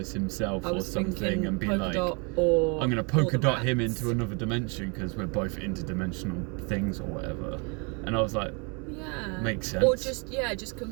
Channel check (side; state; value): left; quieter; 33.0 dB